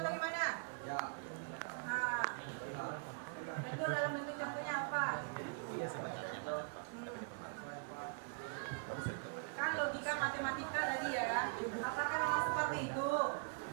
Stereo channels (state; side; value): quieter; left; 39.7 dB